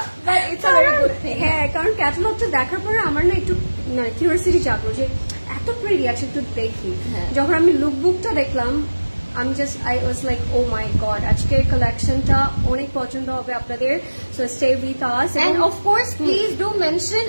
but it's a very good thing. হ্যাঁ, কারণ ক্যাটালগটা দেখার পরে আমার না একটু কিউরিওসিটি জাগলো যে এত প্রিটি আছে, একটু দেখি। যখন আমি লুকবুকটা দেখলাম, I was like, oh my god, আজকের কালেকশনটা অনেক পছন্দ হবে আপনাদের, so stay with us. And of course please do mention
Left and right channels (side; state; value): both; inverted; correlation -1.00